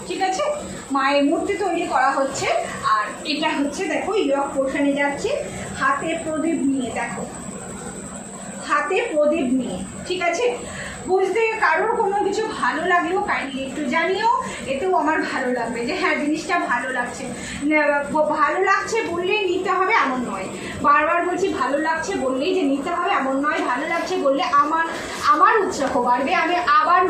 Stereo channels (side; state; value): both; identical; correlation 1.00